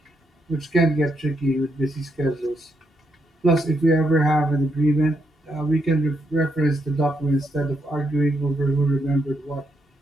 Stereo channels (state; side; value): normal; both; correlation 0.79